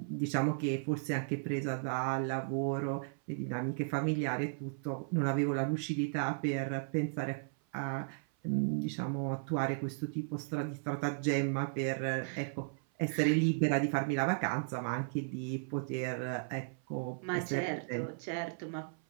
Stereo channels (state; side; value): silent; left; 54 dB below the other